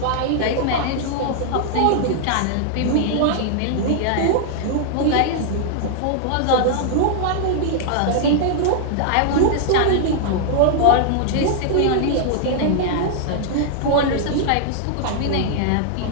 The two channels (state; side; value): different; both; correlation -0.01